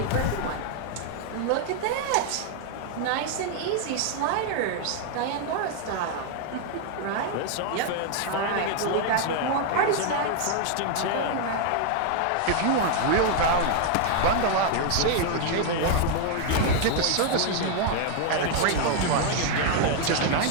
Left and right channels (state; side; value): different; both; correlation 0.00